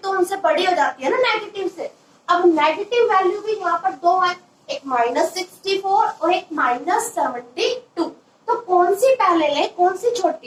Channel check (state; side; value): identical; both; correlation 1.00